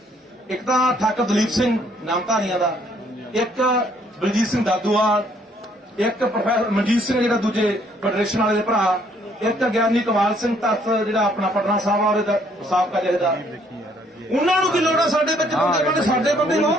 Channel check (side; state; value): both; normal; correlation 0.65